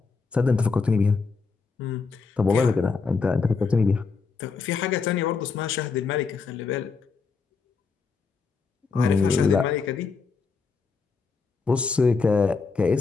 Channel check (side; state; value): right; quieter; 4.8 dB